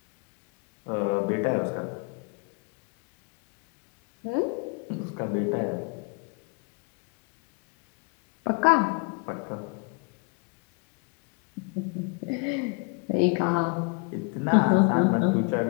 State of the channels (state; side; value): quieter; right; 32.3 dB